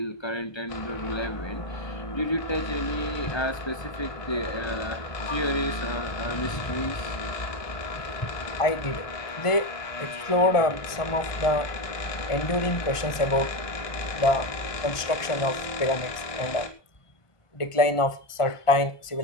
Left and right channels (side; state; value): right; late; 1.4 ms